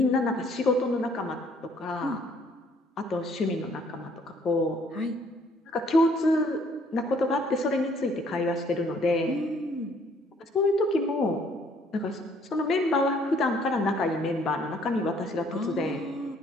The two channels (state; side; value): normal; both; correlation 0.62